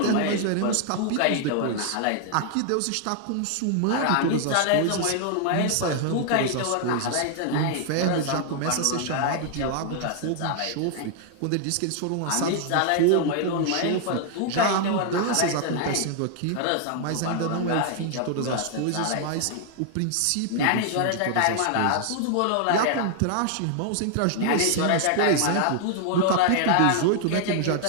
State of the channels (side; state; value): both; different; correlation 0.00